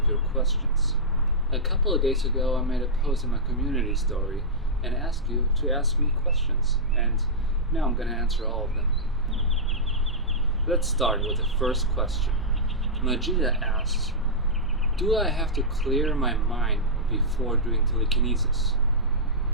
your questions. A couple of days ago I made a post in my community story and asked you to ask me questions, and now I'm going to answer all of them. Let's start with the first question. Majida asks, do I have to clear my mind before doing telekinesis?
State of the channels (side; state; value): both; normal; correlation -0.12